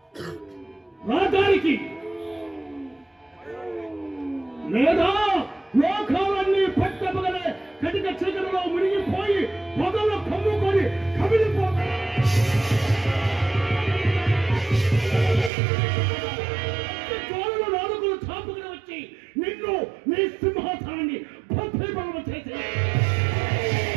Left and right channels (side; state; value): left; drops out; at 15.5 s